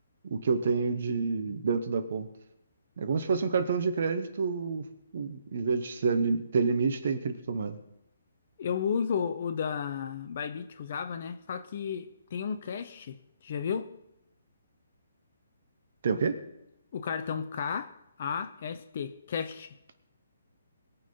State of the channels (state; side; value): inverted; both; correlation -0.70